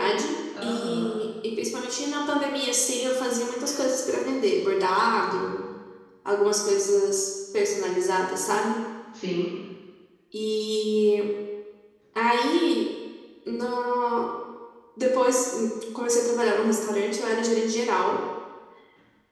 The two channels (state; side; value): identical; both; correlation 1.00